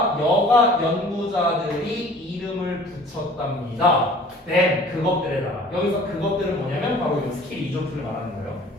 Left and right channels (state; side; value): normal; both; correlation 0.49